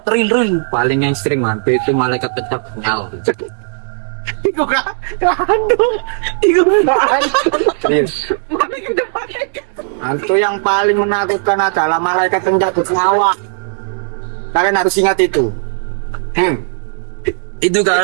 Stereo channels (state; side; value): silent; left; digital silence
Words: real. Paling yang ekstrim hantu itu malaikat pencabut nyawa. Iku kan aduh iku Serius. Hantu yang paling menakutkan adalah malaikat pencabut nyawa. Kalian harus ingat itu. Itu